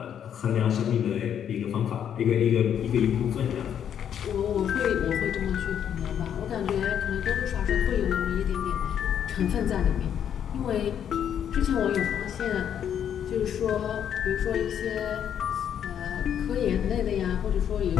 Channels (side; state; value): right; quieter; 9.1 dB